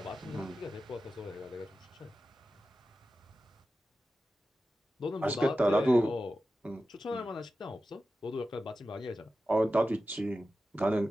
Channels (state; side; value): normal; both; correlation 0.93